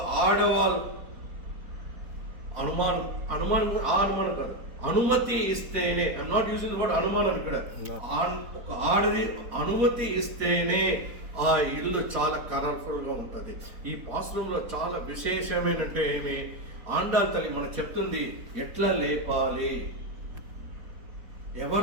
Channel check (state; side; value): late; left; 4.2 ms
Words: ఆడవాళ్ళు అనుమానం కాదు, అనుమతి ఇస్తేనే, I'm not using the word అనుమానం ఇక్కడ, ఒక ఆడది అనుమతి ఇస్తేనే ఆ ఇల్లు చాలా కలర్ఫుల్ గా ఉంటుంది. ఈ పాశ్రంలో చాలా విశేషమైనంటే ఏమి, ఆండాల తల్లి మనం చెప్తుంది ఎట్లా లేపాలి,